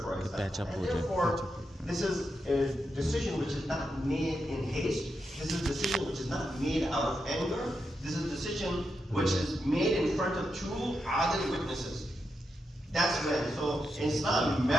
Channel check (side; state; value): both; normal; correlation 0.85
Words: for example. And therefore, this is a decision which is not made in haste. This is a decision which is not made out of anger. This is a decision which is made in front of 2 adil witnesses. That's when. So in Islam,